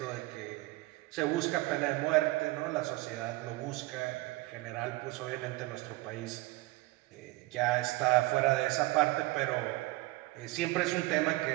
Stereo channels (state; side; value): quieter; left; 20.6 dB